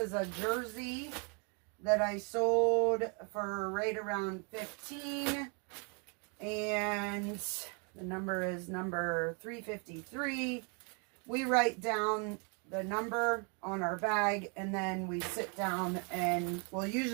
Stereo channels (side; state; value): left; quieter; 35.8 dB